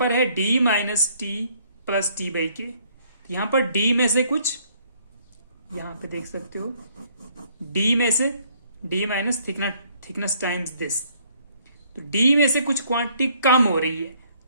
है D minus T plus T by के। यहां पर डी में से कुछ, यहां पे देख सकते हो, डी में से D minus thickness times this, तो डी में से कुछ क्वांटिटी कम हो रही है,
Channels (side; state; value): both; inverted; correlation -0.64